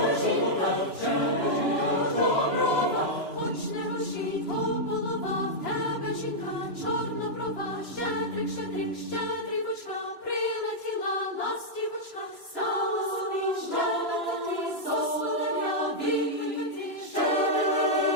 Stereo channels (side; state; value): right; late; 3.0 ms